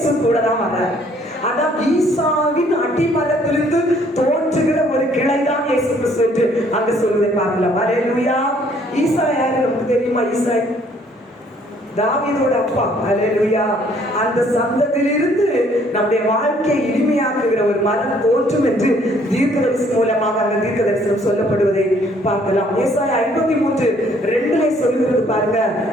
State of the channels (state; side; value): normal; both; correlation 0.62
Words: கூட தான் வர. அதான் ஈசாவின் அடிமரத்திலிருந்து தோன்றுகிற ஒரு கிளைதான் இயேசு கிறிஸ்து என்று அங்கு சொல்வதை பார்க்கலாம். அல்லேலூயா. ஈசா யாரு நமக்கு தெரியுமா? ஈசா தாவீதோட அப்பா. அல்லேலூயா. அந்த சந்ததியிலிருந்து நம்முடைய வாழ்க்கையை இனிமையாக்குகிற ஒரு மரம் தோன்றும் என்று தீர்க்கதரிசனம் மூலமாக அந்த தீர்க்கதரிசனம் சொல்லப்படுவதை பார்க்கலாம். ஏசாயா 53:2 சொல்லுகிறது பாருங்க,